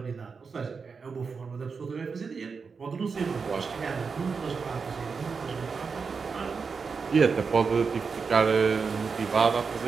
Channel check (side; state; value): left; quieter; 5.2 dB